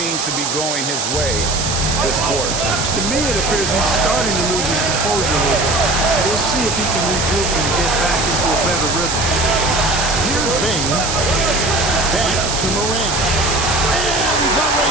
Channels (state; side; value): noise; right; hiss, 2 dB below the sound